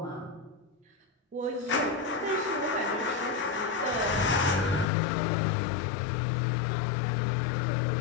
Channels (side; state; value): right; drops out; at 4.9 s